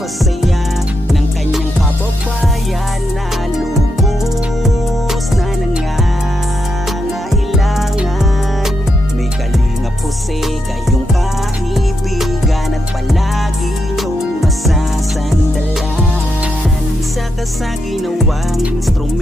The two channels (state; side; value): normal; both; correlation 0.83